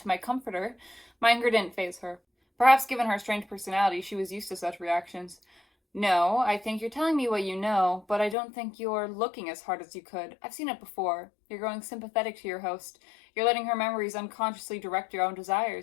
my comforter? My anger didn't faze her. Perhaps given her strange personality, she was used to such reactions. No, I think you're telling me what you know, but I don't think you're looking as hard as you could. I've seen it before. You're growing sympathetic to your host. You're letting her memories unconsciously direct your own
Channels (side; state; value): right; drops out; at 8.3 s